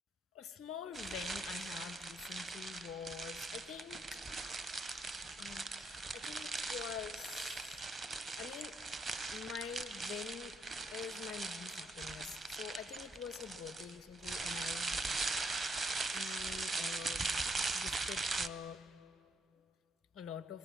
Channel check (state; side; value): normal; both; correlation 0.74